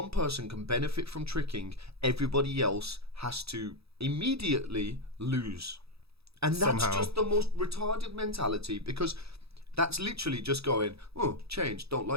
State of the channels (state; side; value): late; left; 0.78 ms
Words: person can benefit from tricking, everybody else has to immediately lose, and that's Somehow. just the most retarded mentality, because that's literally just going, oh, change, don't